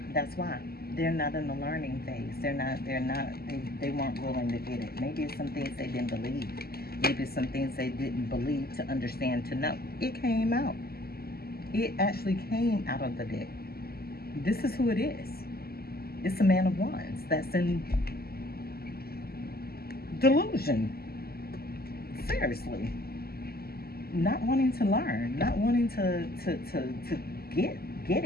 That's why. They're not in the learning phase. They weren't willing to get it. Maybe it's some things they didn't believe. Maybe it's some things they didn't believe to understand, to know. It came out. It actually came out of the deck. This is who it is. It's a Man of Wands that's in delusion. Seriously. Not wanting to learn. Not wanting to get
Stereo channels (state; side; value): late; right; 0.45 ms